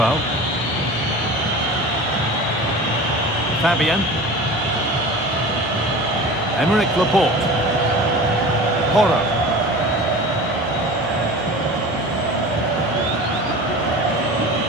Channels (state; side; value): normal; both; correlation 0.36